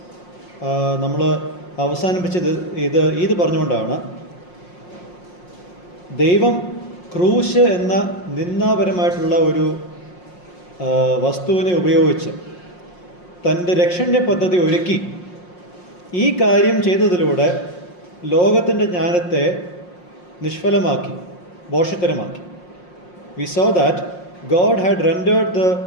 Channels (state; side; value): late; right; 5.6 ms